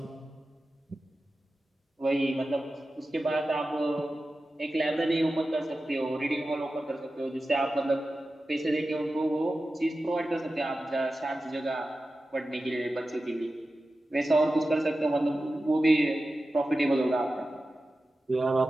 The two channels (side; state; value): both; normal; correlation 0.94